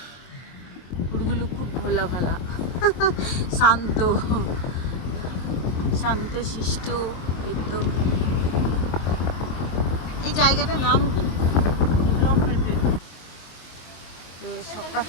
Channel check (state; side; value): late; right; 23 ms